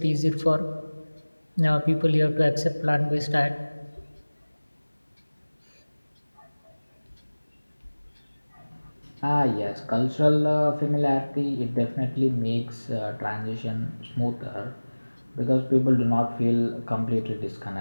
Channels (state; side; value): inverted; both; correlation -1.00